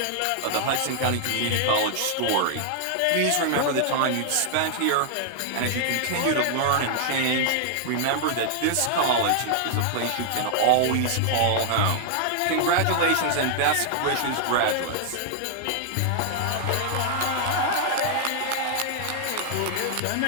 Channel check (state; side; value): different; both; correlation -0.01